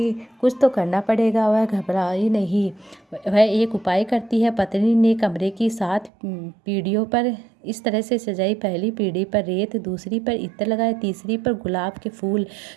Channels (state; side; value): drops out; left; at 6.1 s